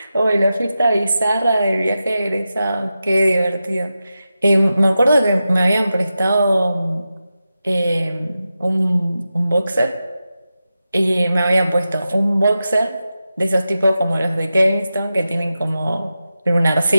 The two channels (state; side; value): inverted; both; correlation -0.91